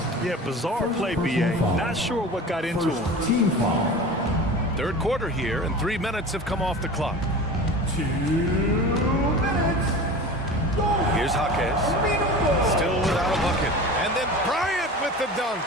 Yeah, bizarre play, B.A. Not sure what got into him. Team foul. Third quarter here, and 3 minutes have come off the clock. 2 minutes. Here's Jaquez. Still without a bucket. And then Bryant with the dunk.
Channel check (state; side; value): normal; both; correlation 0.35